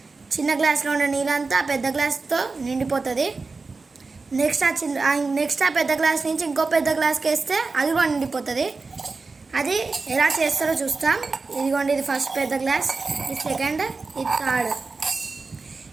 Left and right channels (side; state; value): left; quieter; 4.0 dB